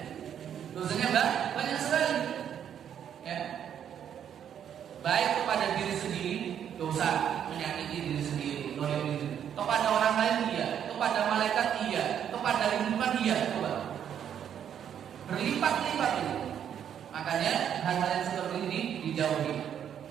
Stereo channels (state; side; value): quieter; left; 9.1 dB